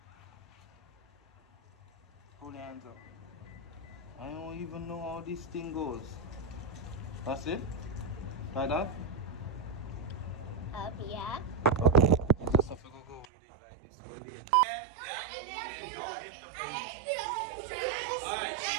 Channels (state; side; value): drops out; left; at 13.2 s